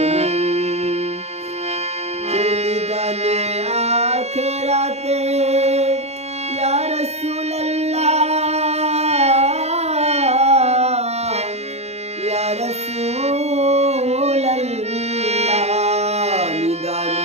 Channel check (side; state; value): left; late; 0.31 ms